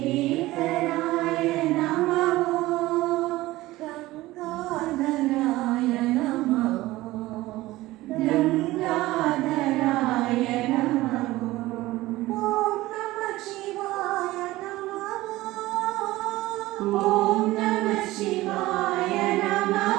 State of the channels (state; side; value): quieter; left; 18.0 dB